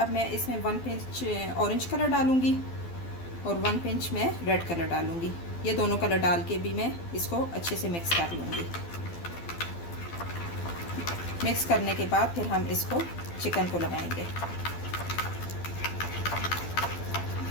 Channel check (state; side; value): late; right; 12 ms